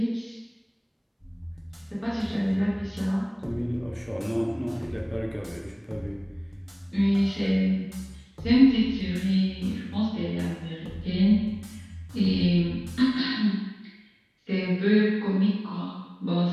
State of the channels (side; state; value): both; identical; correlation 1.00